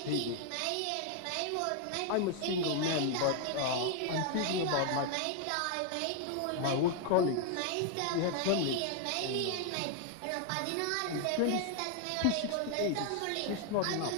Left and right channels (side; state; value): both; different; correlation 0.00